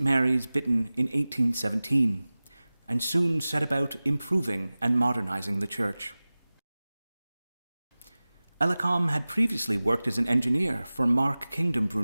Mary's, Bitton in 1817, and soon set about improving and modernizing the church. Ellacombe had previously worked as an engineer for Mark Kingdom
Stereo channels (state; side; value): inverted; both; correlation -0.98